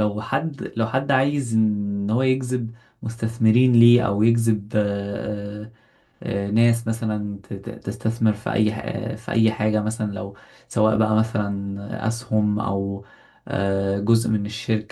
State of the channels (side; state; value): both; identical; correlation 1.00